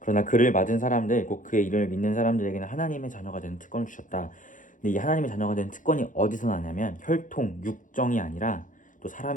그를 맞은 사람들, 곧 그의 이름을 믿는 사람들에게는 하나님의 자녀가 되는 특권을 주셨다. 근데 이 하나님의 자녀가 되는 특권이 어디서 나냐면 혈통, 육정이 아니라, 또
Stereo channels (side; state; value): right; late; 0.38 ms